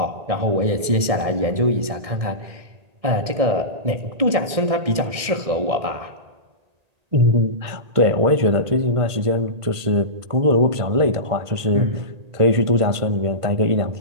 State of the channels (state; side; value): late; left; 1.7 ms